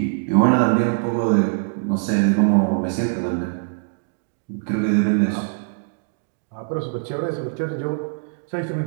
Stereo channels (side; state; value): left; silent; digital silence